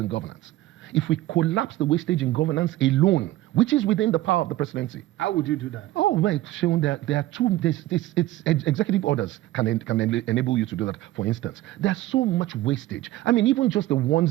governance. If we collapse the wastage in governance alone, which is within the power of the presidency. How would you do that? Oh, right, Sean, there are two, it's executive orders can enable you to do that. For instance, there's so much wastage. I mean, even just the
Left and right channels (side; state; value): left; quieter; 15.8 dB